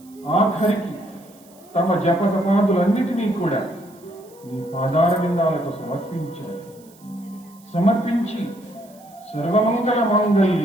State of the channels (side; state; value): right; noise; hiss, 27 dB below the sound